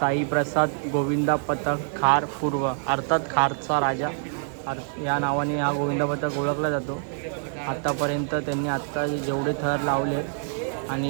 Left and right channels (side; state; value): left; silent; digital silence